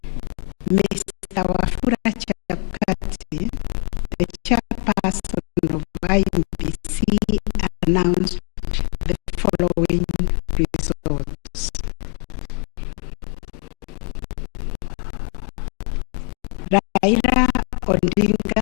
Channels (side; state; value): right; quieter; 37.4 dB